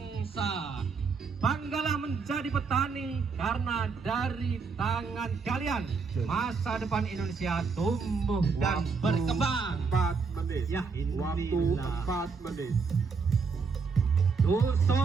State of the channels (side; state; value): left; quieter; 5.0 dB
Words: Banggalah menjadi petani karena dari tangan kalian masa depan Indonesia tumbuh dan berkembang. 4 menit. Ya, Waktu inilah 4 menit.